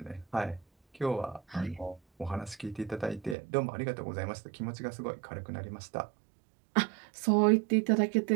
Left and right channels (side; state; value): left; drops out; at 3.4 s